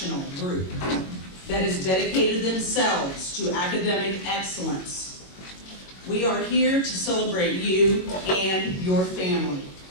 group that has dedicated themselves to academic excellence. We are here to celebrate you and your family.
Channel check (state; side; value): late; right; 22 ms